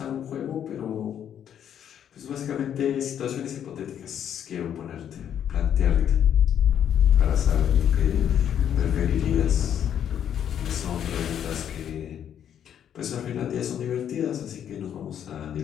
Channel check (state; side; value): quieter; right; 9.4 dB